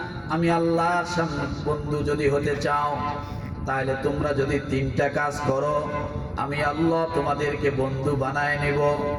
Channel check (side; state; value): both; identical; correlation 1.00